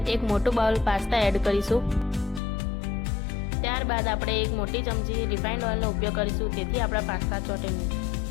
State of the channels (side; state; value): right; drops out; at 2.4 s